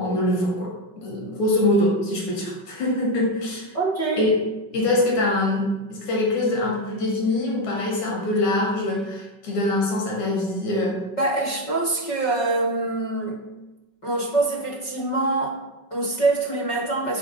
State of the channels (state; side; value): late; right; 5.4 ms